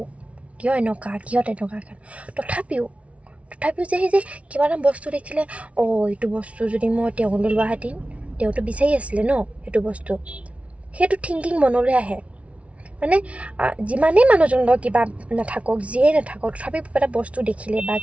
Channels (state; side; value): late; left; 0.064 ms